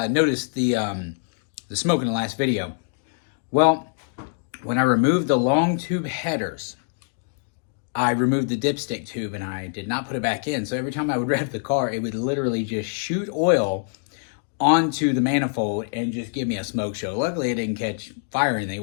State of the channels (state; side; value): silent; right; digital silence